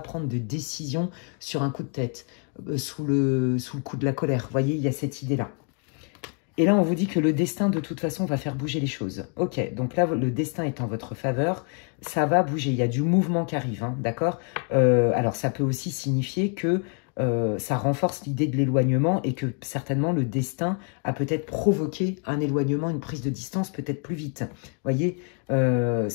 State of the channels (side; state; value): right; quieter; 38.7 dB